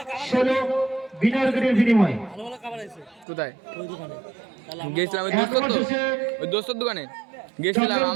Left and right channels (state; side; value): drops out; left; at 3.2 s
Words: 16 বিনা উইকেটের বিনিময়ে কোথায় গেছিলাম ওই দোস্তর দোকানে গেছিলাম